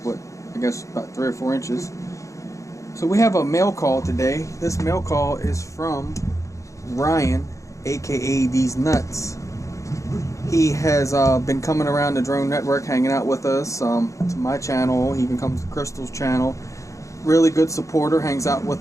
but I guess about 3 or 4 inches. So we have a mail call today. This mail call is from Ryan, aka deeznuts. He has been coming around the drone network, hanging out with us, to my channel. He even comes to Crystal's channel. Really good supporter, hangs out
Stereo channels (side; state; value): right; late; 0.15 ms